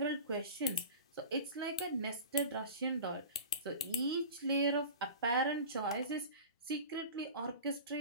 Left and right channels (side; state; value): both; inverted; correlation -0.36